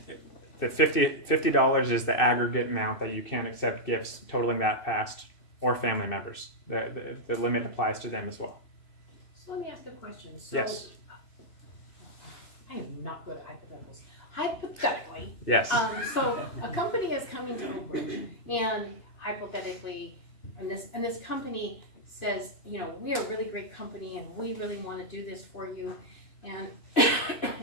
The $50 is the aggregate amount that you can accept gifts totaling that past, or family members. The limit applies to them as well. So let me ask a question. So Yes. I am not good at hypotheticals. Hypothetically, Yes. So a company is coming to Oak Ridge, and hypothetically, and this company says, we are a really great company, and we really want to do this for you, and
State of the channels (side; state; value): right; late; 2.6 ms